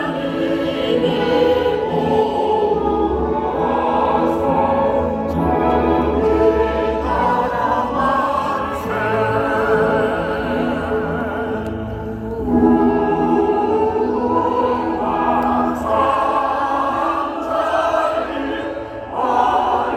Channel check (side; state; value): both; identical; correlation 1.00